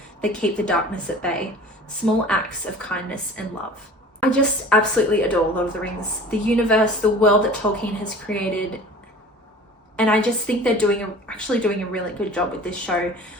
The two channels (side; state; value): both; normal; correlation 0.42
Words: that keep the darkness at bay, small acts of kindness and love." I just absolutely adore Lord of the Rings, the universe, the world that Tolkien has created, and I just think they're actually doing a really good job with this show